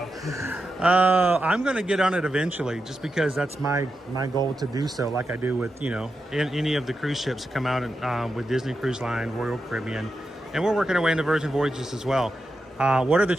I'm going to get on it eventually, just because that's my goal to do so, like I do with, you know, any of the cruise ships that come out with Disney Cruise Line, Royal Caribbean, and we're working our way into Virgin Voyages as well. What are the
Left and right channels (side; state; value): both; normal; correlation 0.88